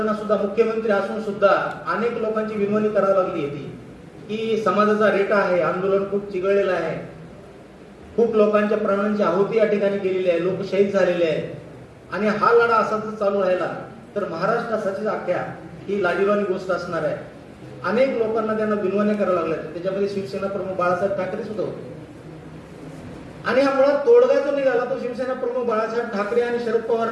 सुद्धा मुख्यमंत्री असून सुद्धा अनेक लोकांची विनवणी करावी लागली होती की समाजाचा रेटा आहे, आंदोलन खूप चिघळलेलं आहे, खूप लोकांच्या प्राणांची आहुती या ठिकाणी गेलेली आहे, लोक शहीद झालेले आहेत आणि हा लढा असाच चालू राहिला तर महाराष्ट्रासाठी अख्ख्या ही लाजिरवाणी गोष्ट असणार आहे. अनेक लोकांना त्यांना विनवण्या कराव्या लागल्या. त्याच्यामध्ये शिवसेना प्रमुख बाळासाहेब ठाकरे सुद्धा होते आणि हा मुळात तोडगा जो निघाला तो शिवसेना प्रमुख बाळासाहेब ठाकरे आणि शरद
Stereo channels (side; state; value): both; identical; correlation 1.00